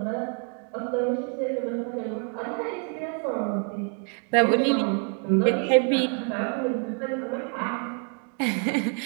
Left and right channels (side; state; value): left; quieter; 39.4 dB